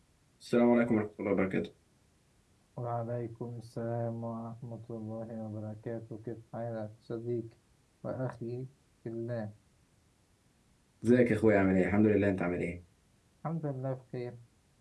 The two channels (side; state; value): both; identical; correlation 1.00